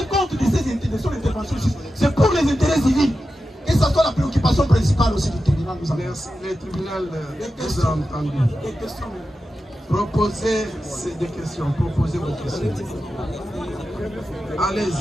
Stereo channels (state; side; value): normal; both; correlation 0.91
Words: compte de ces interventions. C'est pour les intérêts civils. Et ça soit la préoccupation principale aussi du tribunal. Merci. Le tribunal vous a entendu. Des questions. Proposez des questions. Proposez vos questions.